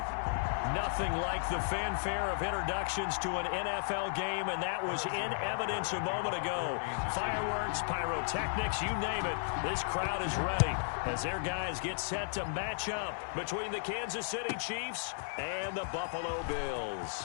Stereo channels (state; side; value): silent; right; digital silence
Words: Nothing like the fanfare of introductions to an NFL game, and that was in evidence a moment ago. Fireworks, pyrotechnics, you name it. This crowd is ready as their guys get set to match up between the Kansas City Chiefs and the Buffalo Bills.